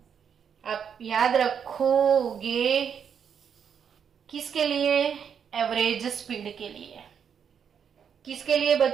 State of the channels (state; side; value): quieter; left; 7.5 dB